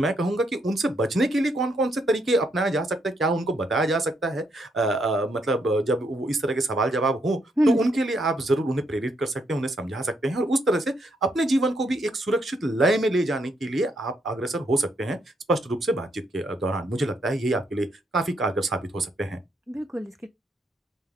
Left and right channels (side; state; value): both; normal; correlation 0.75